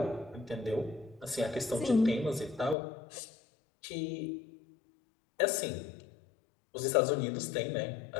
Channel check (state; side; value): drops out; right; at 2.8 s